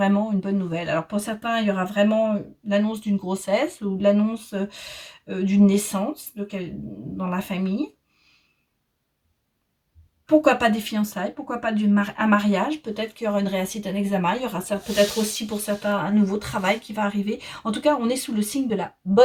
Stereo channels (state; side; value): identical; both; correlation 1.00